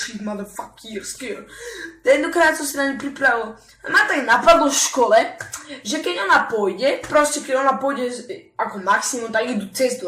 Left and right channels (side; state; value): both; identical; correlation 1.00